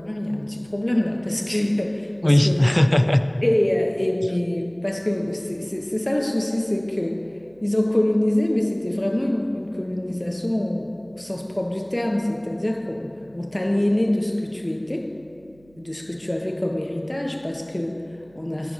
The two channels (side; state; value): right; noise; hum, 30 dB below the sound